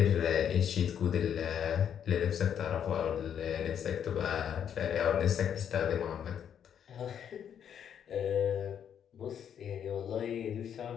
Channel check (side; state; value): right; quieter; 8.7 dB